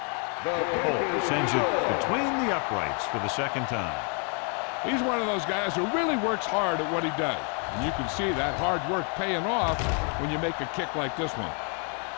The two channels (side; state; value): right; quieter; 38.3 dB